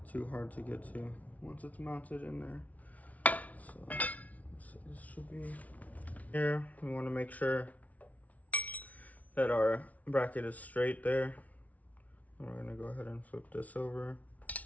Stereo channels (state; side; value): late; right; 0.070 ms